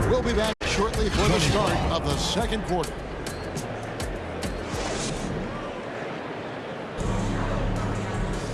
we'll be back shortly for the start of the second quarter.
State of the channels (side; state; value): both; identical; correlation 1.00